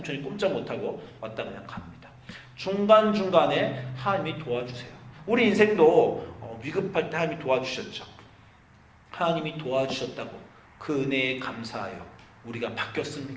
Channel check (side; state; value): both; identical; correlation 1.00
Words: 꼼짝 못하고 왔다 그냥 갑니다. 중간중간에 하나님이 도와주세요. 우리 인생도 위급할 때 하나님이 도와주셨죠. 하나님이 도와주셨다고 그 은혜에 감사하여 우리가